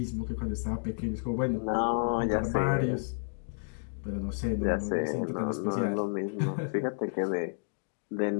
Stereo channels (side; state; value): right; silent; digital silence